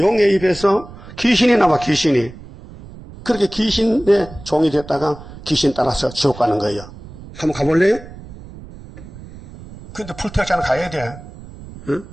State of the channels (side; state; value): right; noise; rumble, 17 dB below the sound